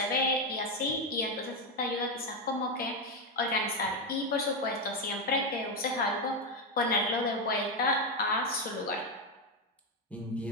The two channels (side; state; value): both; normal; correlation 0.07